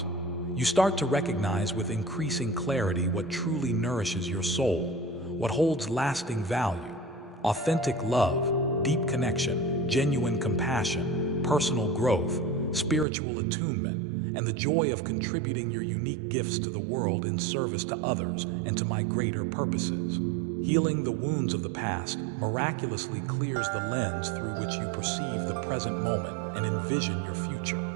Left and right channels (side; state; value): left; drops out; at 13.1 s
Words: You start to recognize with increasing clarity what truly nourishes your soul, what holds lasting value: authentic love, deep connection, genuine compassion, personal growth, spiritual attunement, and the joy of contributing your unique gifts to the world in service to others and to my greater purposes. Healing the wounds of the past miraculously clears the lens through which you perceive the present moment and envision your future.